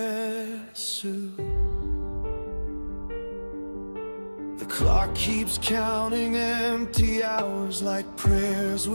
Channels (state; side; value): inverted; both; correlation -1.00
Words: suit. The clock keeps counting empty hours like prayers